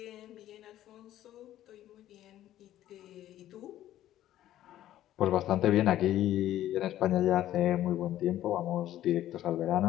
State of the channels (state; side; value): quieter; right; 13.0 dB